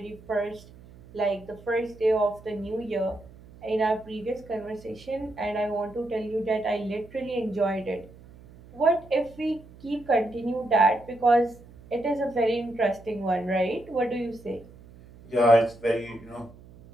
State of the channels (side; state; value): right; noise; hum, 21 dB below the sound